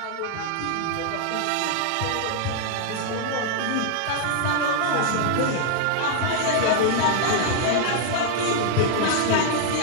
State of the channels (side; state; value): both; different; correlation 0.00